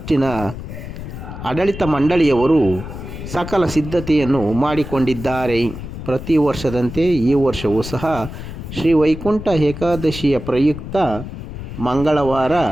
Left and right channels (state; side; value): noise; left; rumble, 10 dB below the sound